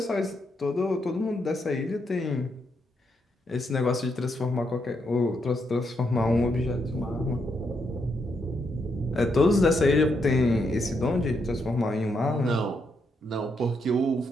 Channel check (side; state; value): both; normal; correlation 0.79